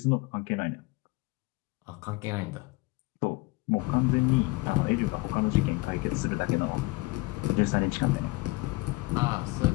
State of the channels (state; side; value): quieter; right; 22.8 dB